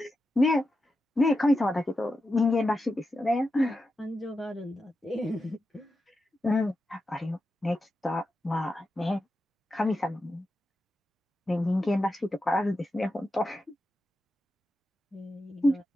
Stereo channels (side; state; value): both; normal; correlation 0.89